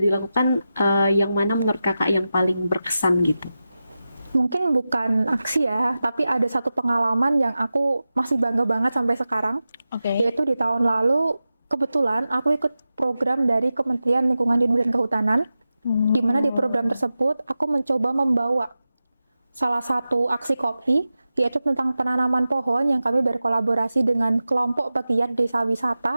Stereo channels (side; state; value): both; inverted; correlation -0.93